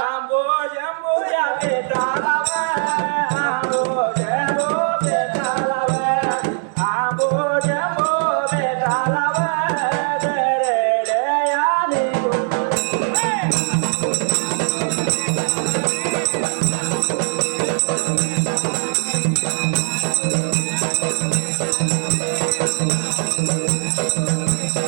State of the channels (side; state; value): left; silent; digital silence